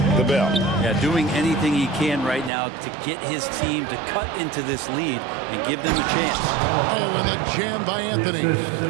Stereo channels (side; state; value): left; drops out; at 2.5 s